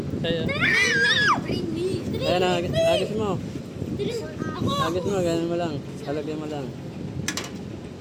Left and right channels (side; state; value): both; identical; correlation 1.00